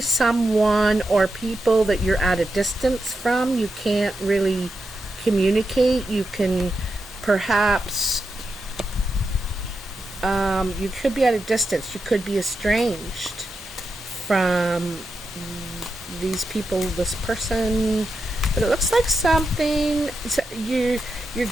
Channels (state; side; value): normal; both; correlation 0.87